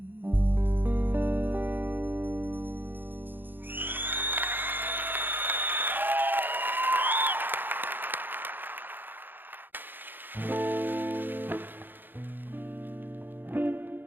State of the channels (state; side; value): late; left; 0.093 ms